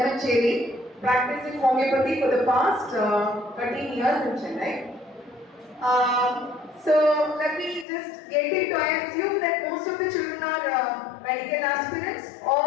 practicing homeopathy for the past 13 years in Chennai. So let me just get into. I assume that most of the children are medical aspirants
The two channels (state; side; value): drops out; right; at 7.9 s